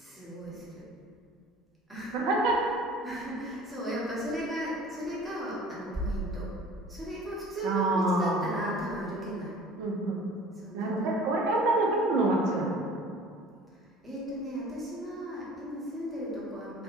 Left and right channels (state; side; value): normal; both; correlation 0.46